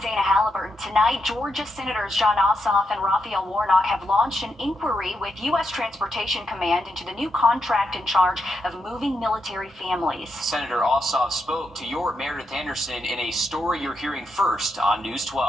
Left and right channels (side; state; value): both; normal; correlation 0.83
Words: Halliburton. Tonight, Georgia Senators Jon Ossoff and Raphael Warnock have launched an inquiry with U.S. Transportation Command into the new contract in charge of moving military families. Senator Ossoff spoke to your Meredith Anderson in a story you're hearing first on News